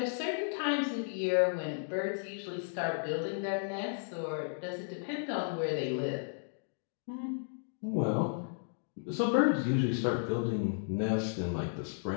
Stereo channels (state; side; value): silent; right; digital silence